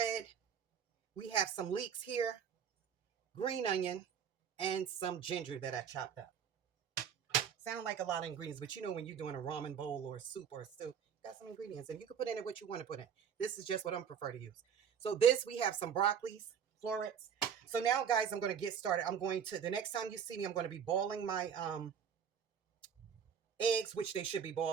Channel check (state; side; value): quieter; left; 7.7 dB